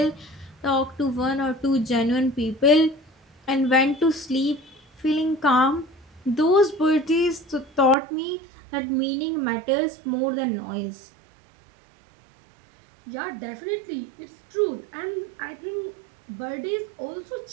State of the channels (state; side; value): drops out; left; at 8.0 s